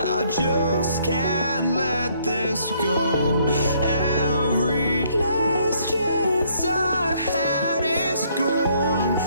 just can't let this go. Every last chance I had is gone,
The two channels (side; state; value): both; inverted; correlation -0.66